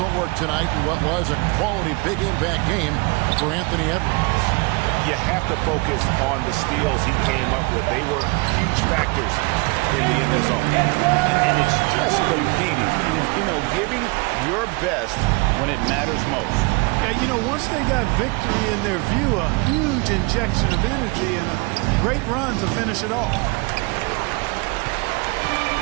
work tonight in what was a quality big impact game for Anthony Edwards. You have to focus on the steals he came up with. They were huge factors in the end zone. And it's just competing, giving your best when it matters most. Yeah, once they got victory in their view, a huge injection of energy and a great run to finish it off.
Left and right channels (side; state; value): left; quieter; 27.7 dB